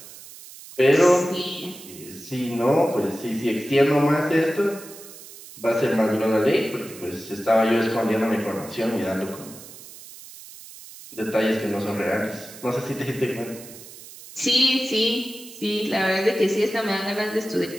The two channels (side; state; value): right; noise; hiss, 17 dB below the sound